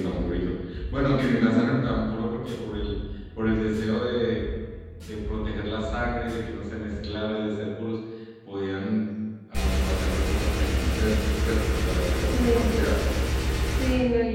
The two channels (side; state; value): both; identical; correlation 1.00